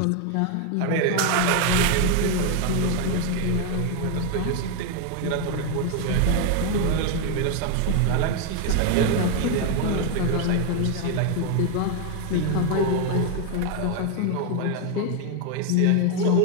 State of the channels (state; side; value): different; both; correlation 0.01